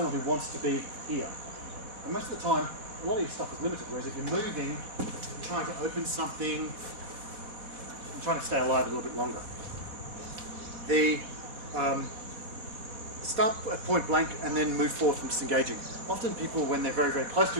who wants to be here. And most of the time, a lot of your stuff is limited, whereas if you're moving, you're trying to open something, and trying to stay alive a little bit longer. The start at point blank and then move forward from disengaging. Often people, when they're very, very close to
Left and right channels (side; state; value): left; late; 4.1 ms